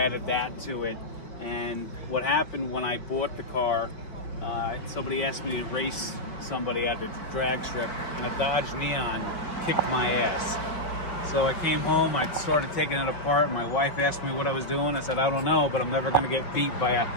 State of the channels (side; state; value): right; late; 5.1 ms